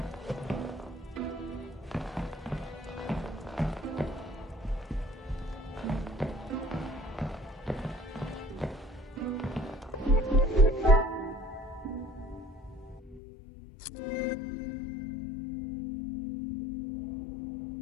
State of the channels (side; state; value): right; drops out; at 13.2 s